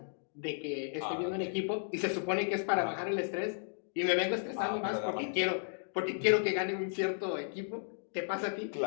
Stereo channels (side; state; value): right; silent; digital silence